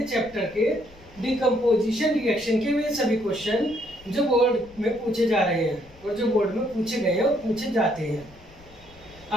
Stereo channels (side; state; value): left; noise; rumble, 23 dB below the sound